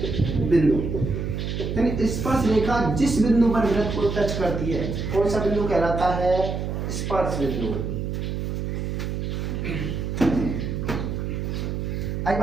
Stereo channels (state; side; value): noise; right; hum, 3 dB below the sound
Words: बिंदु। यानी स्पर्श रेखा जिस बिंदु पर वृत्त को टच करती है, कौन सा बिंदु कहलाता है, स्पर्श बिंदु। आई